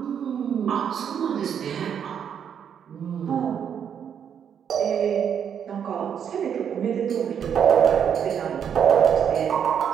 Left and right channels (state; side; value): quieter; left; 8.2 dB